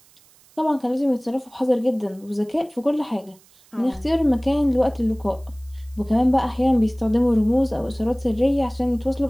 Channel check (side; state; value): right; noise; hiss, 29 dB below the sound